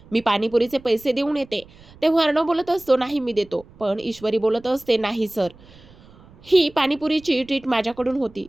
मी पाणीपुरीचे पैसे देऊन येते. तेव्हा अर्णव बोलत असतो, नाही मी देतो. पण ईश्वरी बोलत असते, नाही सर, ही पाणीपुरीची ट्रीट माझ्याकडून होती,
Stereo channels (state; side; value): noise; right; rumble, 24 dB below the sound